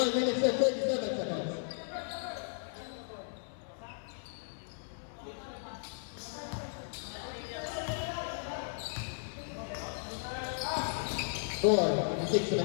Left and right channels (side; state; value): right; silent; 54 dB below the other